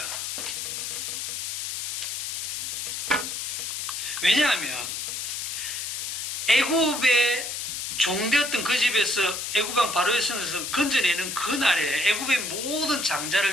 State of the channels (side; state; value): left; noise; hiss, 4 dB below the sound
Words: 왜냐하면 애굽의 종되었던 그 집에서 애굽왕 바로의 손에서 건져내는 그날에, 애굽의 모든